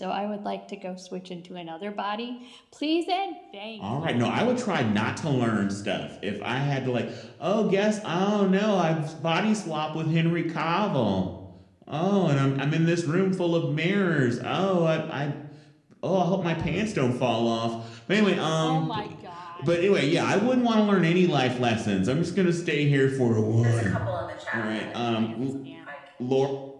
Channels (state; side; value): identical; both; correlation 1.00